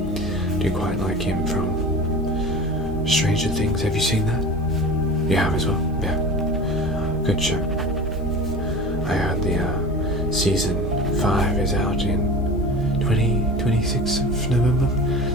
Do you quite like him from Stranger Things? Have you seen that? You have as well? Yeah. Good show. I heard the season 5 is out in 26th of November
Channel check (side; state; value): both; normal; correlation 0.35